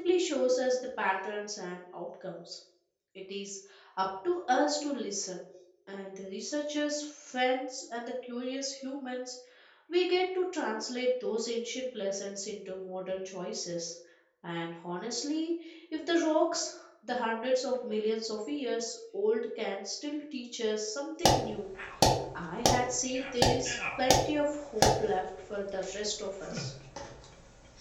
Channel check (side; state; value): both; identical; correlation 1.00